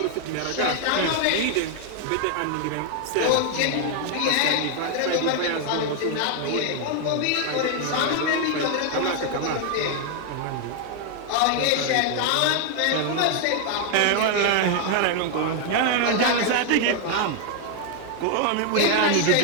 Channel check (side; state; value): both; different; correlation 0.00